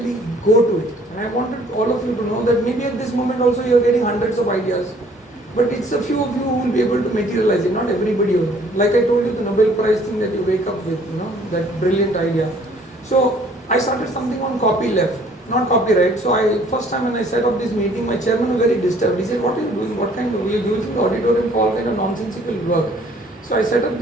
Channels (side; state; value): both; normal; correlation 0.58